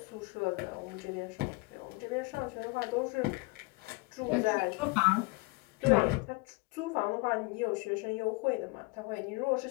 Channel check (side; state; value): right; quieter; 26.4 dB